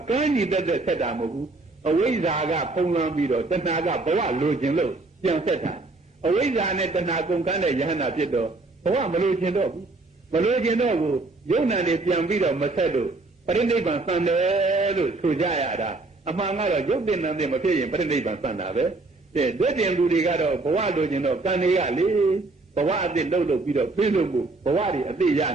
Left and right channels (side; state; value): left; quieter; 3.3 dB